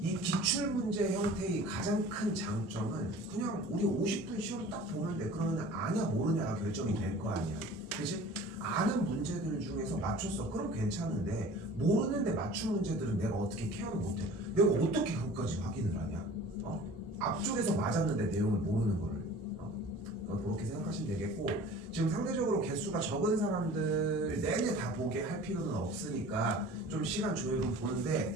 이 기출문제 형태의 가장 큰 장점은 그냥 우리 50분 시험 딱 보는데 그러면 아냐 모르냐가 결정이 될 거 아니야. 그치? 아는 문제들 중에서 맞췄어. 그럼 괜찮은데 모르는데 맞춘 문제들은 내가 어떻게 케어를 못해. 내가 어떻게 그것까지 확인을 하냐. 앞쪽에서 맞았는데 내용을 모르는 거를. 그렇게 생각하시면 되겠고, 지금 상대적으로 개수가 적은 사람들 내내 다 보게 할 필요는 없으니까 좀 시간 조율을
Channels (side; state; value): both; normal; correlation 0.44